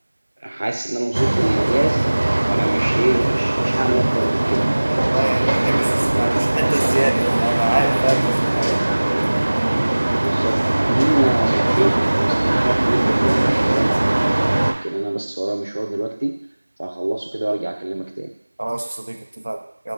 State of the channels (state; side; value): inverted; both; correlation -1.00